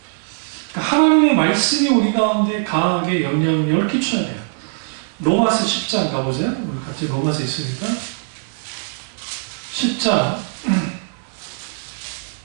그러니까 하나님의 말씀이 우리 가운데 강하게 영향력을 끼쳐야 돼요. 로마서 10장 가보세요. 우리 같이 로마서 있으니까 10장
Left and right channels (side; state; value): left; silent; digital silence